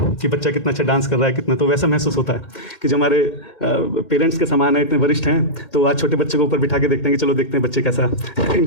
कि बच्चा कितना अच्छा डांस कर रहा है कितना, तो वैसा महसूस होता है कि जो हमारे पेरेंट्स के समान है, इतने वरिष्ठ हैं, तो आज छोटे बच्चे को ऊपर बिठा के देखते हैं कि चलो देखते हैं बच्चे कैसा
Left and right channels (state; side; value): late; right; 1.9 ms